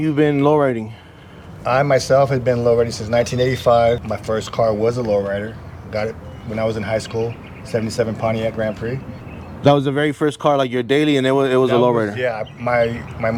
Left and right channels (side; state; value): both; identical; correlation 1.00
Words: been lowriding? I myself have been lowriding since 1985. My first car was a lowrider. Got it when I was in high school, 77 Pontiac Grand Prix. That was the very first car, like your daily, and it was a lowrider. Yeah, my